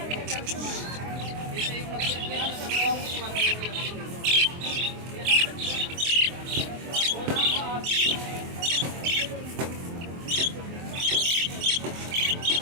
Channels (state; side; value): late; left; 23 ms